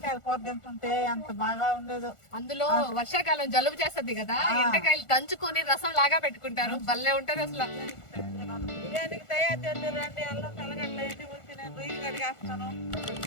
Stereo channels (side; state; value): right; late; 1.4 ms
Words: కూర తింటుంటే ఎంత బాగా ఉండేదో. అందులో వర్షాకాలం జలుబు చేస్తుంది కదా, ఎంటకాయలు దంచుకొని రసం లాగా పెట్టుకుంటారు, భలే ఉంటది అసలు. బిర్యానీకి తయారు చేద్దాం రండి, అల్లం తెల్లగడ్డ ఎన్ని ఉంచి నేను రొయ్యలు కడిగేస్తాను.